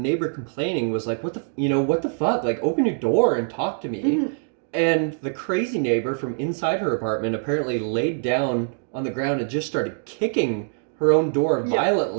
complaining was like, what the fuck? Like, open your door and talk to me. And the crazy neighbor from inside her apartment apparently laid down on the ground and just started kicking her own door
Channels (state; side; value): silent; left; digital silence